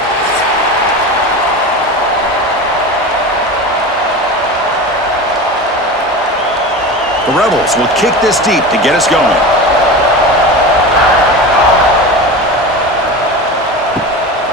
The Rebels will kick this deep to get us going.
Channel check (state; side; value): normal; both; correlation 0.29